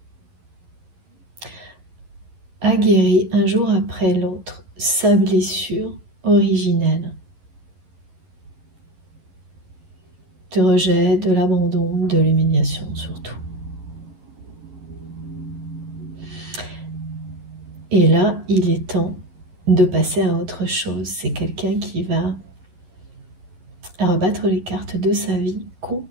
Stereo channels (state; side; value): late; left; 11 ms